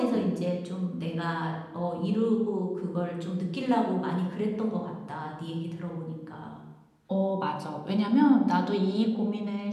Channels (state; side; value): identical; both; correlation 1.00